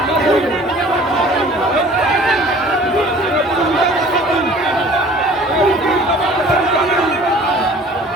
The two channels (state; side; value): normal; both; correlation 0.49